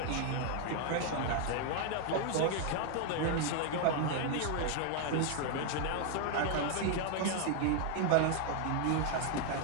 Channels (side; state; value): both; different; correlation 0.00